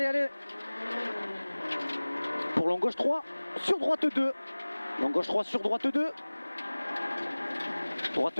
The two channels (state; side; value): inverted; both; correlation -1.00